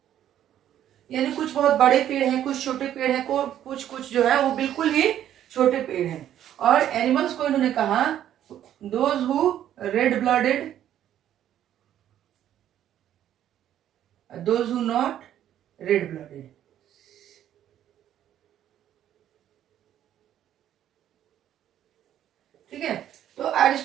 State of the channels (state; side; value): quieter; left; 11.1 dB